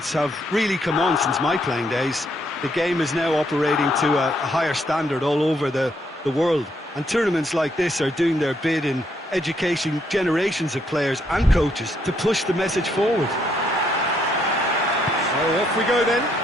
have really come on since my playing days. The game is now operating to a higher standard all over the world, and tournaments like this are doing their bit in educating generations of players and coaches to push the message forward. So off we go then.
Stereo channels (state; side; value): normal; both; correlation 0.73